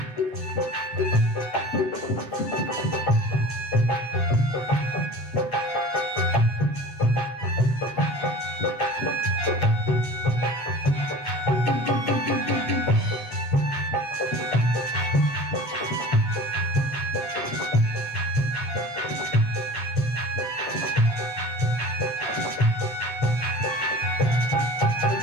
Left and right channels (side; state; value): right; late; 7.8 ms